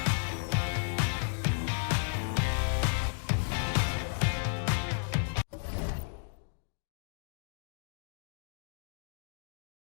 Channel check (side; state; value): right; silent; digital silence